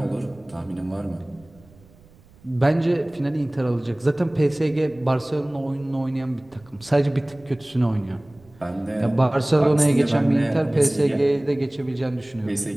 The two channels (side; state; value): right; noise; rumble, 27 dB below the sound